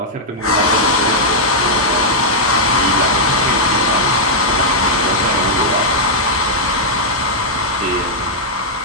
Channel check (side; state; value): both; normal; correlation -0.06